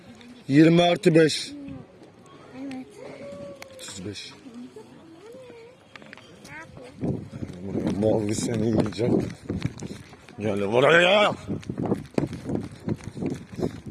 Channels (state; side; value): identical; both; correlation 1.00